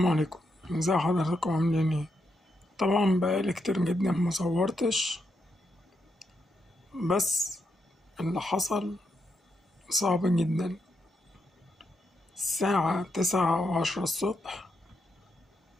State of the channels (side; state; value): both; normal; correlation 0.82